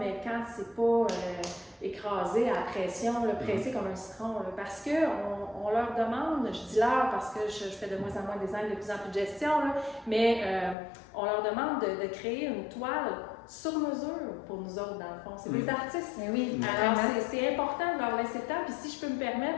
quand c'est pas écrasé à la pression, là, pressé comme un citron, là, parce qu'on leur demande, je dis leur parce que je fais de moins en moins de design, de plus en plus de gestion, là, mais on leur demande de créer une toile sur mesure pour nous autres, dans le fond. C'est des artistes. Mais oui, alors c'est important de leur laisser le temps. Puis si je peux me permettre,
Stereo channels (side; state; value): right; drops out; at 10.8 s